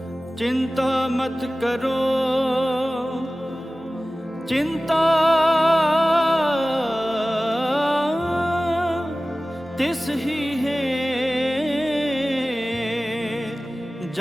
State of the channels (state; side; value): normal; both; correlation 0.97